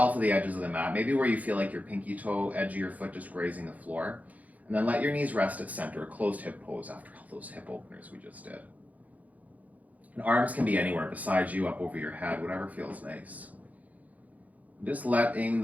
to the edges of the mat, maybe where you feel like your pinky toe, edge of your foot just grazing the floor. And then let your knees rest at center, a closed hip pose after all those hip openers we just did. And arms can be anywhere beside you, up over your head, whatever feels nice. Just letting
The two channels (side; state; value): left; late; 0.076 ms